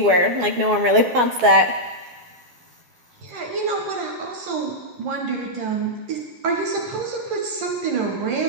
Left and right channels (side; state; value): left; late; 12 ms